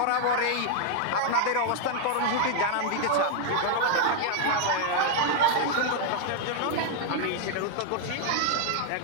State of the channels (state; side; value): different; both; correlation 0.00